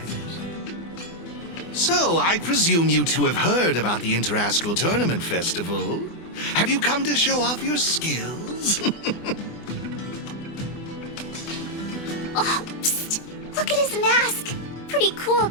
So, I presume you two have heard about the Interastral Tournament Festival. Have you come to show off your skills? Oh, psst! Look at his mask! mask. Pretty cool,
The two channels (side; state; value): right; late; 24 ms